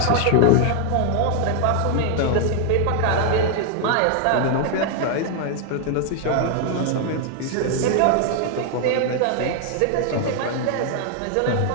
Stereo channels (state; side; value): different; both; correlation 0.00